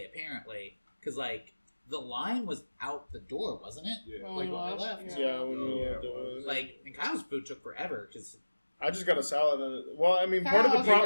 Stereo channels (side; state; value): both; inverted; correlation -1.00